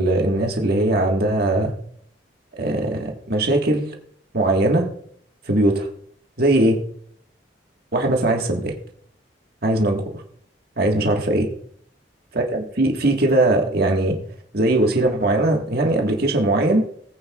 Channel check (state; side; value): normal; both; correlation 0.48